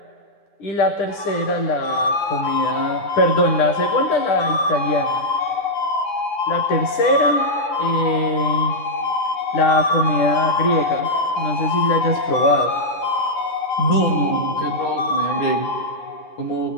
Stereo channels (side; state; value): right; late; 9.8 ms